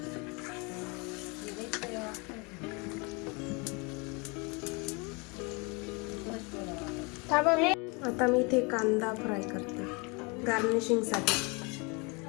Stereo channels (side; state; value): right; quieter; 30.2 dB